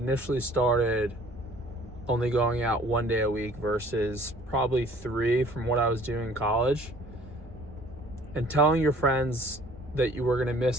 started only going out 1 day a week versus probably 3 from what I was doing in college. And telling your friends that you were going to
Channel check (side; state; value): both; normal; correlation 0.53